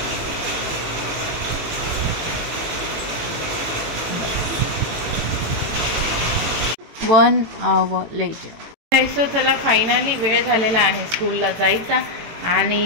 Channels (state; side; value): late; left; 18 ms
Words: One hour later. सो चला फायनली वेळ झालेला आहे स्कूलला जायचा आणि